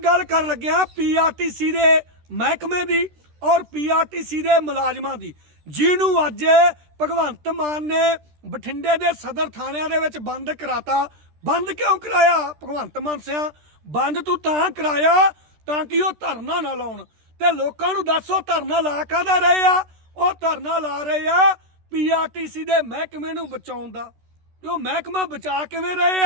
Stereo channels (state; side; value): late; left; 13 ms